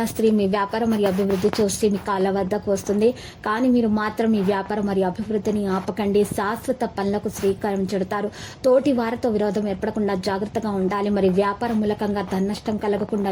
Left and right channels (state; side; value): identical; both; correlation 1.00